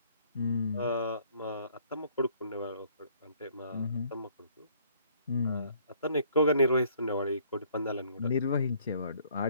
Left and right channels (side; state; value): both; inverted; correlation -0.61